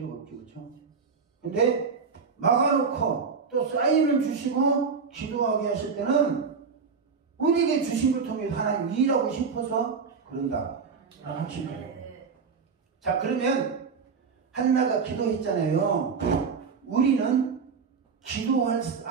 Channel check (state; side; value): quieter; left; 5.5 dB